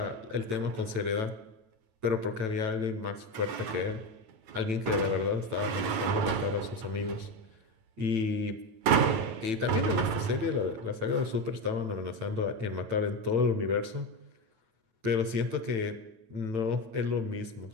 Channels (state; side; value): late; left; 9.1 ms